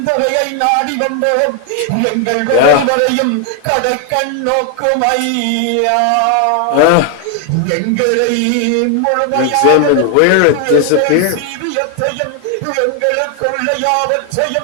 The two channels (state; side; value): different; both; correlation 0.00